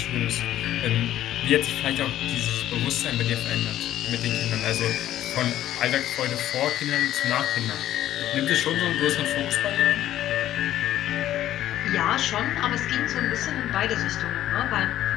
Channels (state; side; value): quieter; right; 12.7 dB